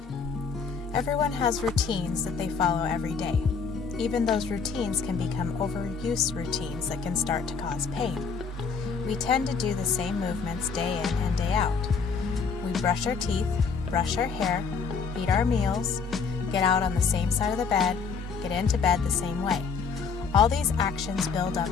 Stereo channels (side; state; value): right; quieter; 5.5 dB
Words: Everyone has routines that they follow every day. Even those routines can become overuse routines that can start to cause pain. We tend to do the same movements day in and day out. We brush our teeth, brush our hair, eat our meals, get out on the same side of the bed, get into bed the same way. All these actions build up